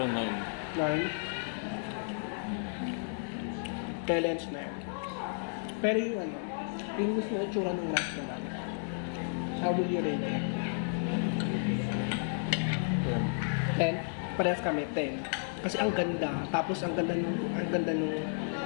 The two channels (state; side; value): silent; right; digital silence